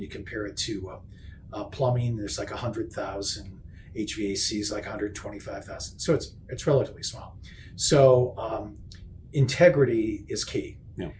compare it to plumbing. There's like 100,000, HVACs like 125,000. So it's relatively small. So integrity is key. Yeah.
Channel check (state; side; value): identical; both; correlation 1.00